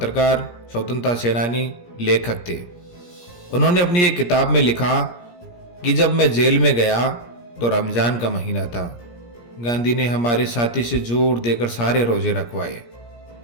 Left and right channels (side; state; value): right; late; 17 ms